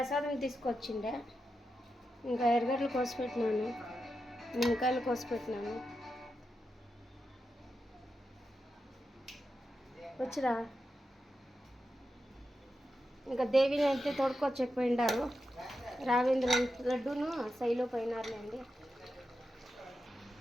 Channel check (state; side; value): normal; both; correlation 0.88